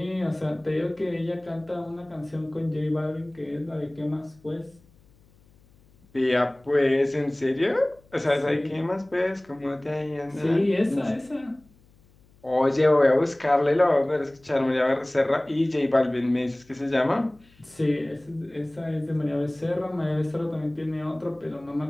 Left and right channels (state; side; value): noise; left; hum, 30 dB below the sound